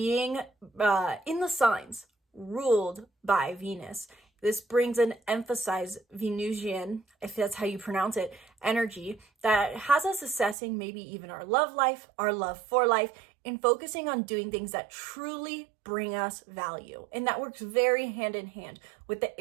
in the signs ruled by Venus. This brings an emphasized Venusian, if that's how you pronounce it, energy that has us assessing maybe even our love life, our love for life, and focusing on doing things that truly bring us value. And that works very hand in hand with the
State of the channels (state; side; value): drops out; left; at 10.6 s